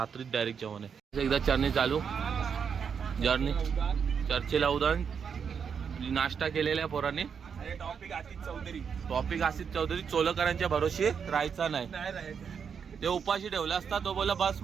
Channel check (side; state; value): left; quieter; 6.8 dB